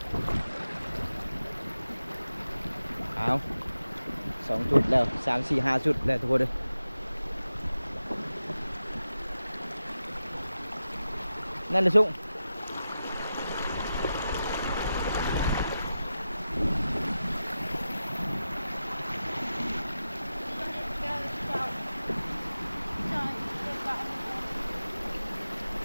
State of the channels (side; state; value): both; inverted; correlation -0.92